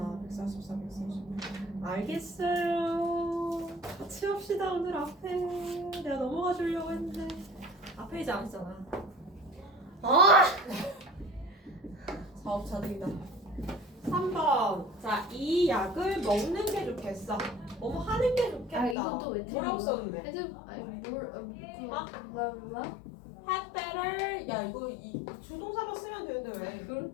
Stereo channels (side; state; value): right; drops out; at 18.9 s